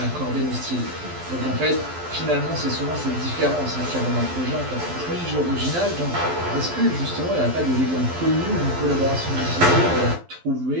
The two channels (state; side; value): late; left; 12 ms